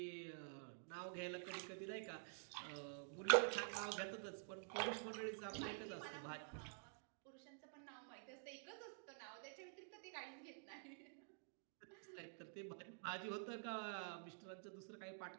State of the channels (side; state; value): left; silent; digital silence